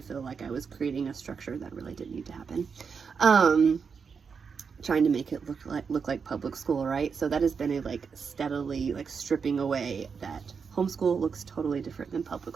feel like I was creating a structure that really didn't need to happen. Trying to make it look like public school, right? So that has been a like steadily like stripping away that homeschool looks totally different than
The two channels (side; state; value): left; quieter; 5.9 dB